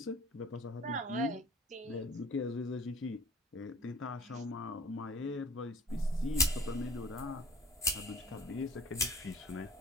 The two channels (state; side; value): normal; both; correlation 0.49